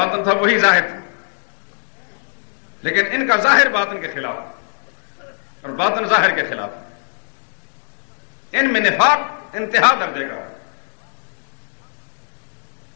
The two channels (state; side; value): silent; right; digital silence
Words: تھا وہی ظاہر تھا. لیکن ان کا ظاہر باطن کے خلاف ہے اور باطن ظاہر کے خلاف ہے. ان میں نفاق انتہا درجے کا ہے.